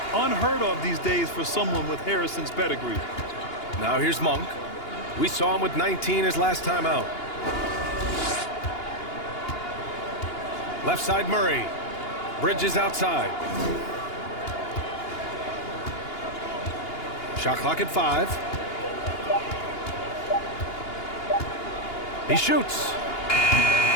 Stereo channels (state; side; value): late; right; 2.8 ms